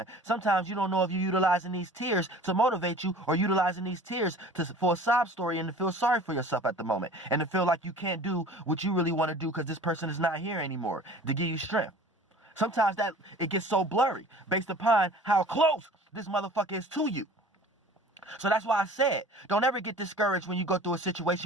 Sometimes you don't know if you're utilizing these tears to motivate you, or utilizing these tears for a sob story and to feel sorry for yourself at the moment, and to feel like you can't do what you really want to do because this person is not here anymore to give you strength. Sometimes that it gets so blurry based upon how close this motherfucker is to you. So that's why I said, don't ever get discouraged when you go through a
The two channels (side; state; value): both; normal; correlation 0.45